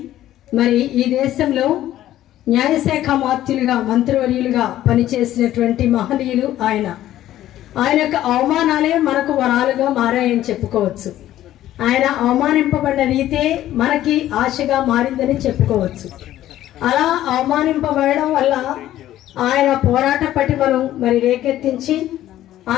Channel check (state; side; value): quieter; right; 13.3 dB